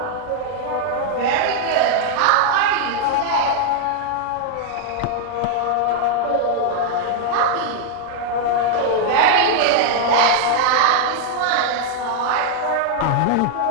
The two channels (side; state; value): both; different; correlation 0.00